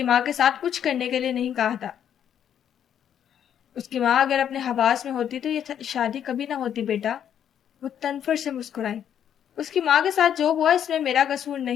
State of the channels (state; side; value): quieter; right; 9.3 dB